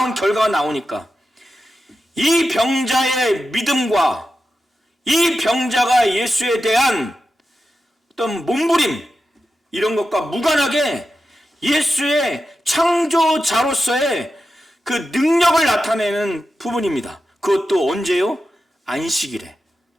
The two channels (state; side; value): normal; both; correlation 0.91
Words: 결과가 나오니까 이 병자의 믿음과 이 병자가 예수에 대한 어떤 몸부림 이런 것과 무관하게 예수의 창조자로서의 그 능력을 나타내는 부분입니다. 그것도 언제요? 안식일에.